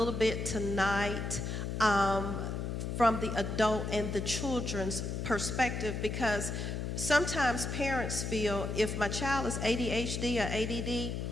bit tonight from the adult and the children's perspective, because sometimes parents feel if my child is ADHD or ADD,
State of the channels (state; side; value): noise; left; hum, 3 dB below the sound